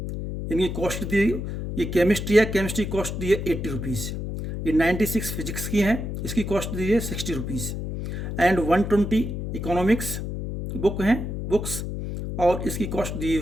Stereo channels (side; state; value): left; noise; hum, 5 dB below the sound